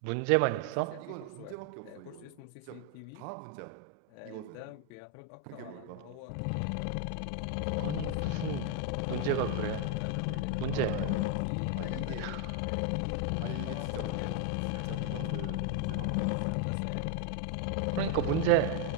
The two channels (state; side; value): different; both; correlation 0.01